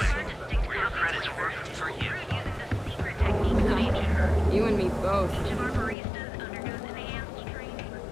where your credits work for you. You and me both.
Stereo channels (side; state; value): right; drops out; at 6.0 s